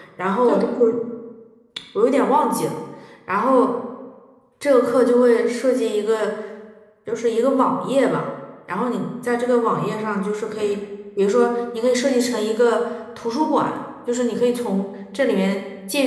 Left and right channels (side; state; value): both; identical; correlation 1.00